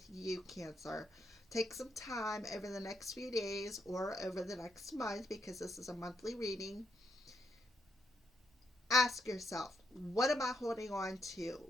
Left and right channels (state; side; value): normal; both; correlation 0.78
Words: you, Cancer. Take some time over the next few days or over the next month, because this is a monthly reading. Ask yourself, what am I holding on to?